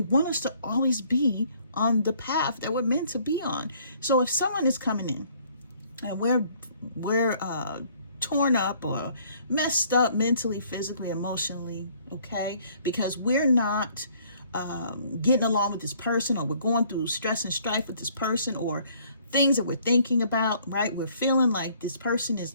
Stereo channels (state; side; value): inverted; both; correlation -0.61